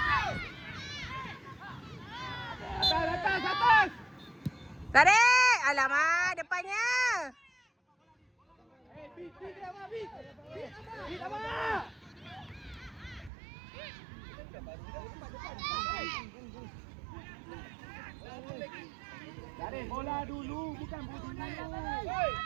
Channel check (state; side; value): drops out; left; at 13.3 s